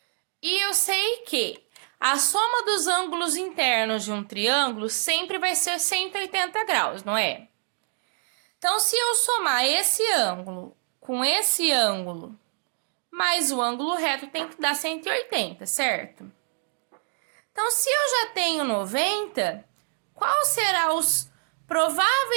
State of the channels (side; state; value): left; silent; digital silence